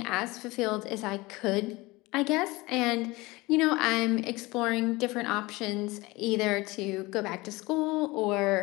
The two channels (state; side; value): quieter; right; 22.0 dB